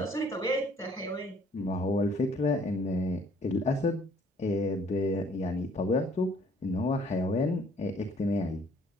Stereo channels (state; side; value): normal; both; correlation 0.60